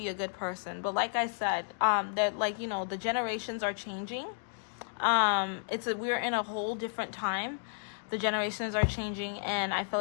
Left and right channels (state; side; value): silent; right; digital silence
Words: a good person, but like I said, that, like, you know, the generations are changing. We're in a whole different time. The generations are changing, and I feel